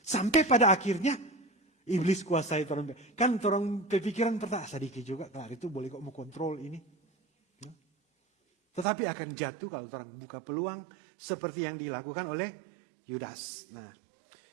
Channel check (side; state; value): left; drops out; at 8.8 s